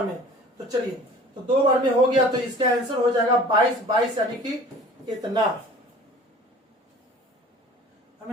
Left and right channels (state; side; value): normal; both; correlation 0.45